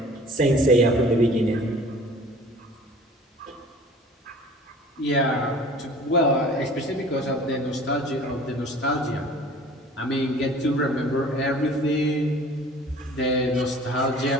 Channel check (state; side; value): normal; both; correlation 0.47